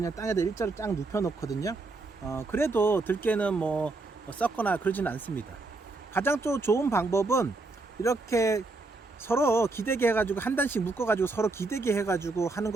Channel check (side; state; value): left; quieter; 3.4 dB